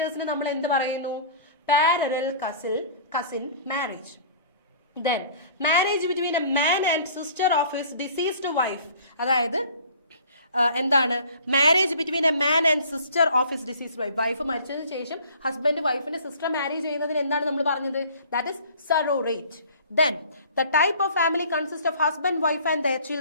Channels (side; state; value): both; inverted; correlation -0.48